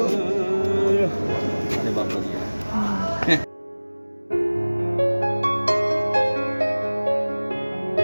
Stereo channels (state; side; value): inverted; both; correlation -1.00